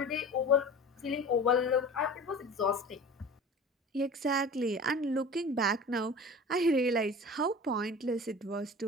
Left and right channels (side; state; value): both; normal; correlation 0.37